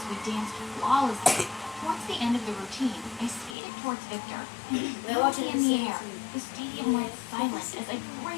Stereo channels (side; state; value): right; drops out; at 3.6 s